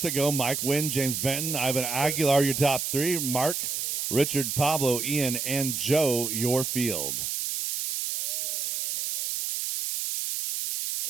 to go. Mike Wynn, James Benton, Ivan Aguilar, your top three. Mark, Richard, Pablo, Ian, and Joe, your field.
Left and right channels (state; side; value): noise; right; hiss, 2 dB below the sound